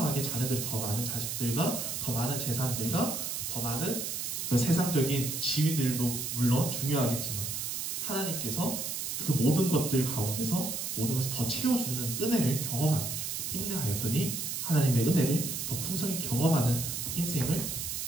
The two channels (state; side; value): noise; right; hiss, 3 dB below the sound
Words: 자녀들이 더 많은 자식들과 더 많은 재산들과 더 많은 그 세상적인 지위들도 물론 중요하겠지만, 하나님께서 그 모든 것들 가운데서 모든 것을 더 채워주는 은혜를 경험하게 되죠. 인내하였더니 하나님의 은혜를 더 풍성히 경험하는 인생을